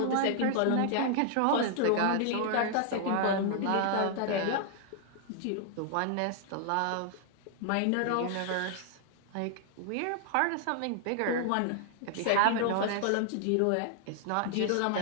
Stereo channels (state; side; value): different; both; correlation 0.00